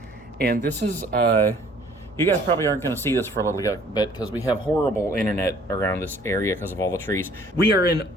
And this is, you guys probably aren't going to see this for a little bit because we have horrible internet around this area because of all the trees. We are in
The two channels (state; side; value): normal; both; correlation 0.56